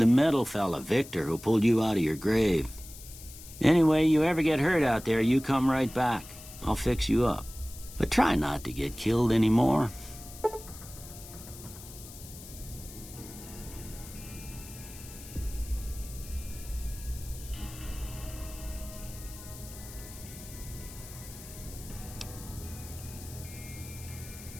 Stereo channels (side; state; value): left; noise; hiss, 16 dB below the sound